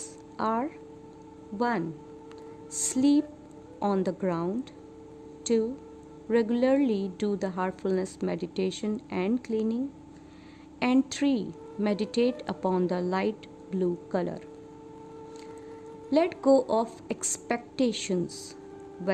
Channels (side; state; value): both; identical; correlation 1.00